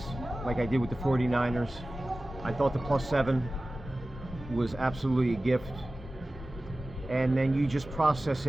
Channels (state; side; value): normal; both; correlation 0.96